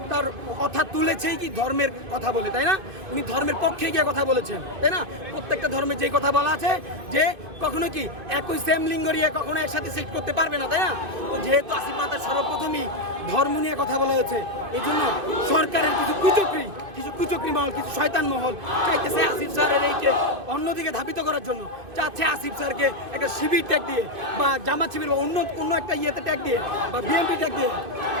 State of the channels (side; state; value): left; late; 2.5 ms